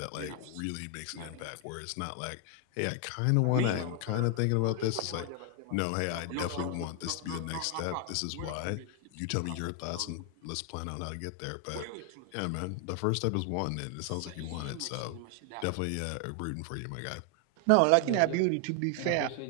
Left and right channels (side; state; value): both; different; correlation 0.00